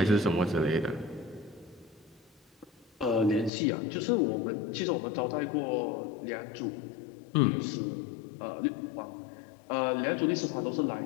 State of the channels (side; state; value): right; drops out; at 3.5 s